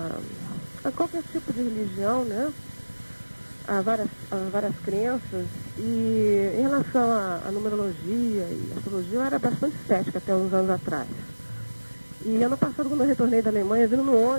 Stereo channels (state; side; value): inverted; both; correlation -1.00